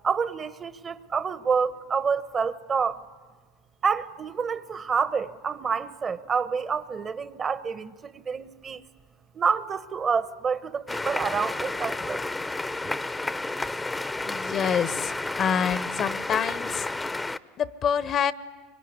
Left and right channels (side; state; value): both; normal; correlation 0.78